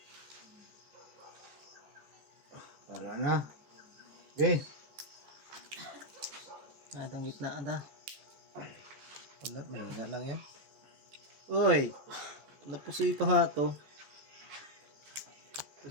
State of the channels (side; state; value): left; late; 14 ms